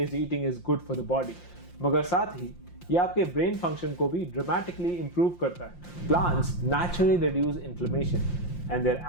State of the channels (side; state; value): right; late; 5.7 ms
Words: eating is good for the body, मगर साथ ही ये आपके ब्रेन फंक्शन को भी ड्रामेटिकली इंप्रूव करता है। Plants naturally reduce inflammation and their